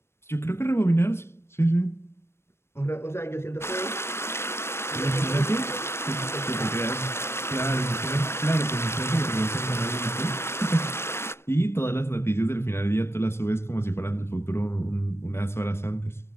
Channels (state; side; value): late; right; 0.12 ms